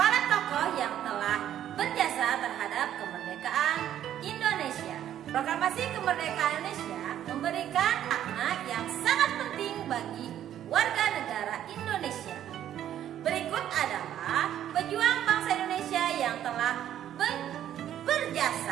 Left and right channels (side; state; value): left; quieter; 11.0 dB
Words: tokoh yang telah berjasa terhadap kemerdekaan Indonesia. Proklamasi kemerdekaan Indonesia memberikan makna yang sangat penting bagi warga negara Indonesia. Berikut adalah pejuang bangsa Indonesia yang telah